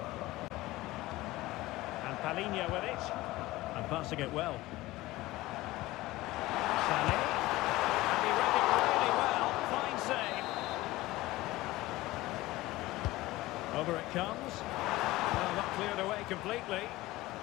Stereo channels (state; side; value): quieter; right; 18.4 dB